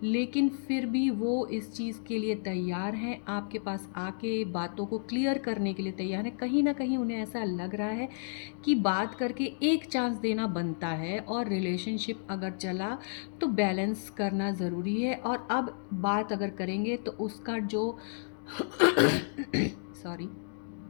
लेकिन फिर भी वो इस चीज़ के लिए तैयार हैं, आपके पास आके बातों को क्लियर करने के लिए तैयार हैं। कहीं ना कहीं उन्हें ऐसा लग रहा है कि बात करके एक चांस देना बनता है, और रिलेशनशिप अगर चला तो बैलेंस करना ज़रूरी है। और अब बात अगर करेंगे तो उसका जो सॉरी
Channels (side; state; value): right; silent; digital silence